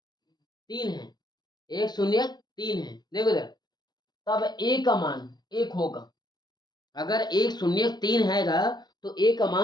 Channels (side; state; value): right; late; 0.20 ms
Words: 3 है। एक शून्यक 3 है। देखो इधर, तब a का मान 1 होगा। अगर एक शून्यक 3 हैगा तो a का